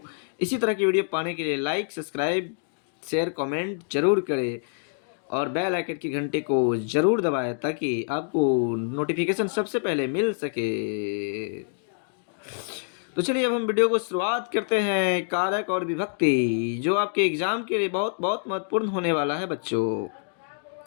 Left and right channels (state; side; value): silent; right; digital silence